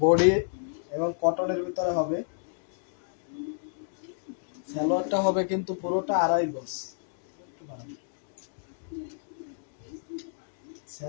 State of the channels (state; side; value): silent; right; digital silence